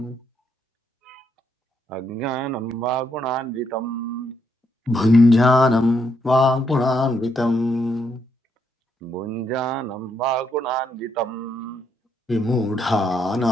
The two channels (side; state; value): both; normal; correlation 0.76